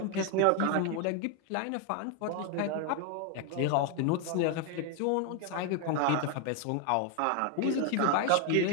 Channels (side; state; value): both; different; correlation 0.01